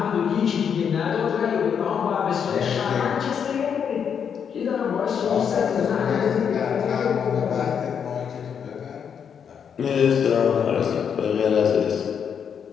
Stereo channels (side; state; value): right; quieter; 7.5 dB